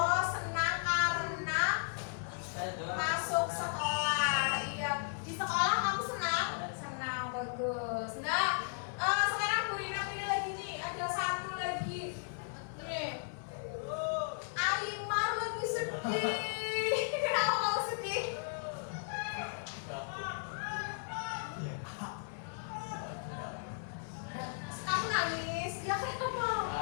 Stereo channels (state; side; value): silent; right; 54 dB below the other